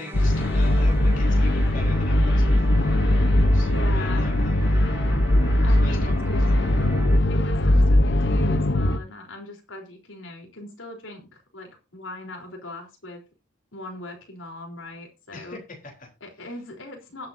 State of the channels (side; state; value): both; normal; correlation 0.89